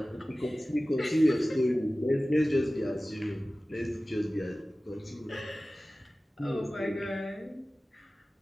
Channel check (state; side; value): normal; both; correlation 0.97